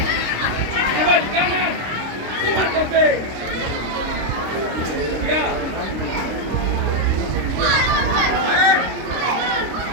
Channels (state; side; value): late; left; 26 ms